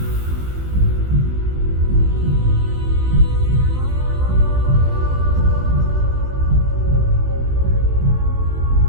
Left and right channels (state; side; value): late; left; 15 ms